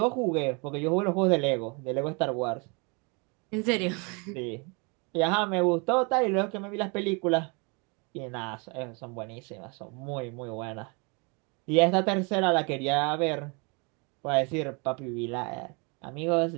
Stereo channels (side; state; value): left; quieter; 31.7 dB